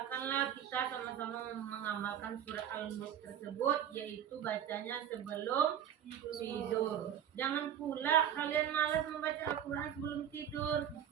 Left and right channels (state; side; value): quieter; left; 9.8 dB